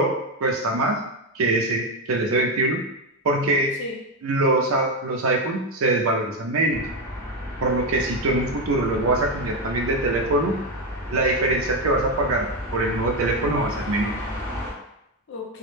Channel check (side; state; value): both; normal; correlation 0.10